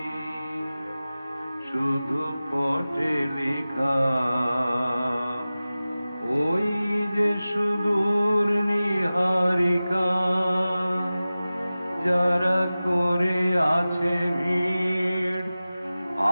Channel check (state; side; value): inverted; both; correlation -0.96